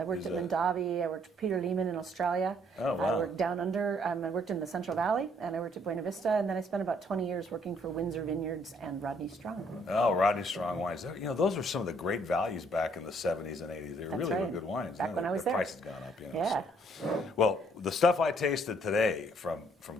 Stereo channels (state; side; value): normal; both; correlation 0.66